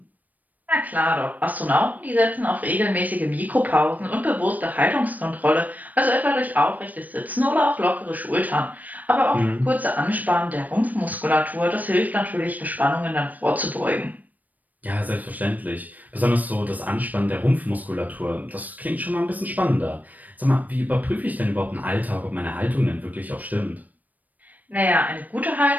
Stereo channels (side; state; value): left; late; 0.080 ms